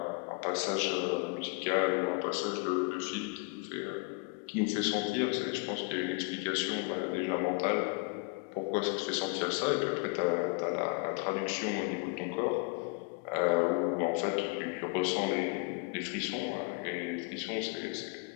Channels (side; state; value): right; quieter; 30.9 dB